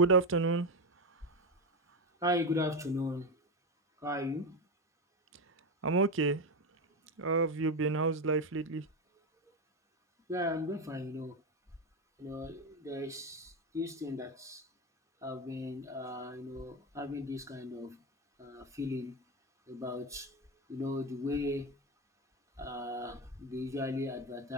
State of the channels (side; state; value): both; normal; correlation 0.13